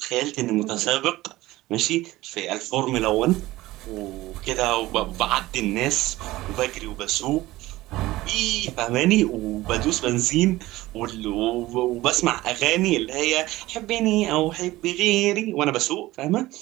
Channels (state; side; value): quieter; left; 17.7 dB